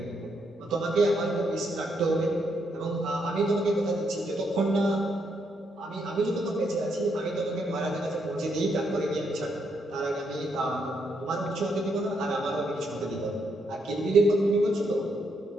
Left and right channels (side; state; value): both; normal; correlation 0.77